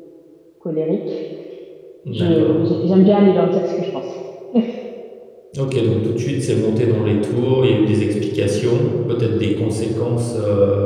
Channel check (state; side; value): identical; both; correlation 1.00